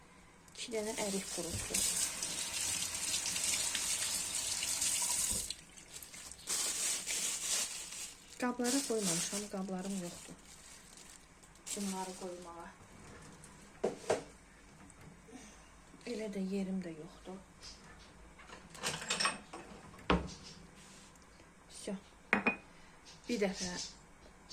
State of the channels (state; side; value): identical; both; correlation 1.00